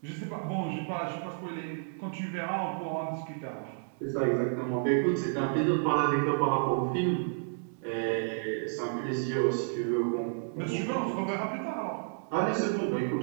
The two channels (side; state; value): left; silent; 57 dB below the other